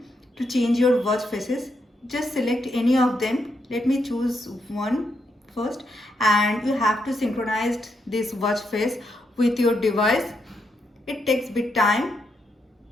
to change your watch faces. Just select any of them. Let me choose one first, and you have to synchronize this watch face with your device. It takes bit time.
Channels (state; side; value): normal; both; correlation 0.80